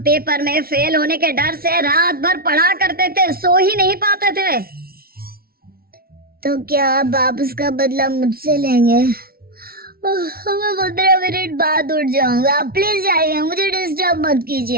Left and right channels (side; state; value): left; late; 0.44 ms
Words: पेपर में फेल होने के डर से रात भर पढ़ा करते थे, सो ही नहीं पाते थे। तो क्या आप उसका बदला मुझसे लेंगे? मैं 15 मिनट बाद उठ जाऊंगा, आप प्लीज जाइए, मुझे डिस्टर्ब मत